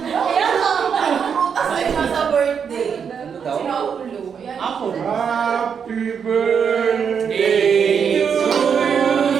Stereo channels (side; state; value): left; quieter; 7.0 dB